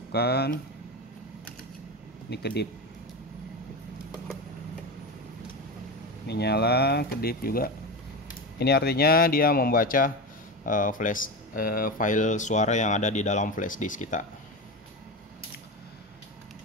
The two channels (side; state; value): both; normal; correlation 0.21